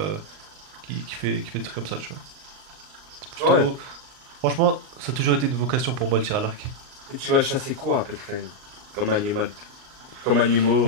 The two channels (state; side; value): late; left; 39 ms